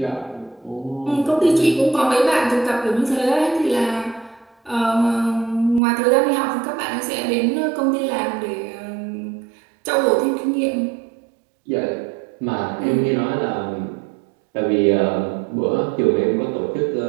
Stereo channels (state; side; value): drops out; left; at 5.8 s